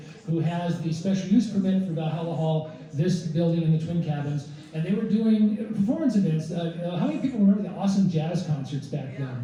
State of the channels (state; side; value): identical; both; correlation 1.00